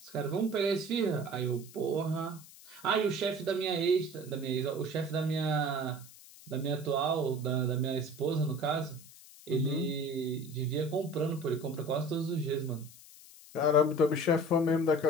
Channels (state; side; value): noise; left; hiss, 20 dB below the sound